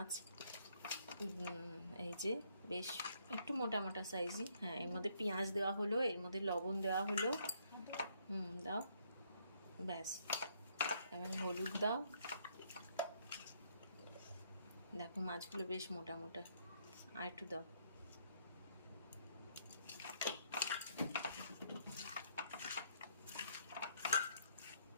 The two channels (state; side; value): inverted; both; correlation -0.69